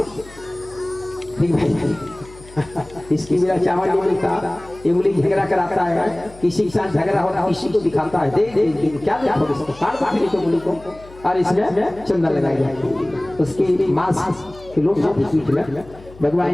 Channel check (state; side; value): noise; left; hum, 21 dB below the sound